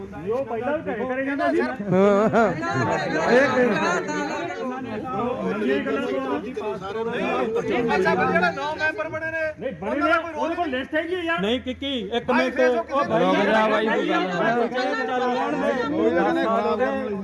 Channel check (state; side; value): identical; both; correlation 1.00